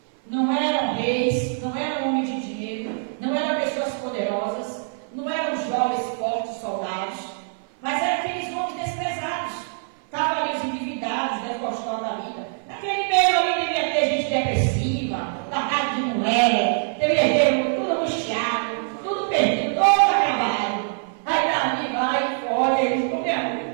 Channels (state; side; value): silent; left; 55 dB below the other